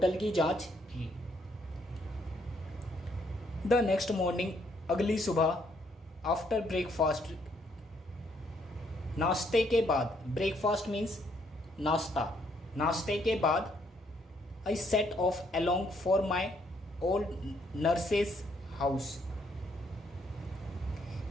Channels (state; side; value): normal; both; correlation 0.70